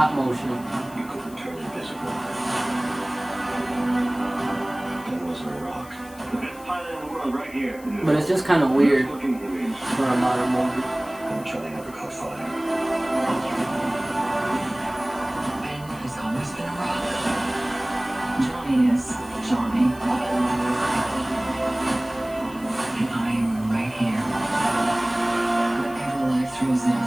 motion. You couldn't turn invisible. That wasn't a rock. The best pilot in the world right here. But it's just kind of weird Looking movies. for a modern movie. I'm trying to never caught fire. Ben has always been a rock. Johnny is Johnny. And I am right here. Whatever life throws at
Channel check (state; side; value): noise; left; hiss, 21 dB below the sound